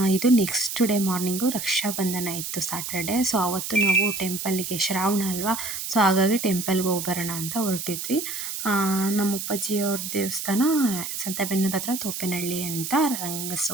ಇದು ನೆಕ್ಸ್ಟ್ ಡೇ ಮಾರ್ನಿಂಗು ರಕ್ಷಾಬಂಧನ ಇತ್ತು ಸ್ಯಾಟರ್ಡೆ. ಸೊ ಆವತ್ತು ನಾವು ಟೆಂಪಲ್ಗೆ ಶ್ರಾವಣ ಅಲ್ವಾ, ಸೊ ಹಾಗಾಗಿ ಟೆಂಪಲ್ಗೆ ಹೋಗಿ ಬರೋಣ ಅಂತ ಹೊರಟಿದ್ವಿ. ನಮ್ಮ ಅಪ್ಪಾಜಿಯವ್ರ ದೇವಸ್ಥಾನ ಸಂತೆಬೆನ್ನೂರು ಹತ್ರ ತೋಪೇನಹಳ್ಳಿ ಅಂತ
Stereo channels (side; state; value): right; noise; hiss, 5 dB below the sound